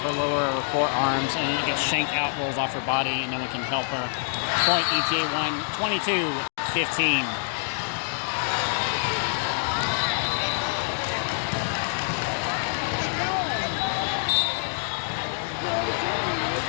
lower forearms, and it gets shanked out, rolls off her body, and no one can help her. Point ETA1, 22-15.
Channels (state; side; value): silent; right; digital silence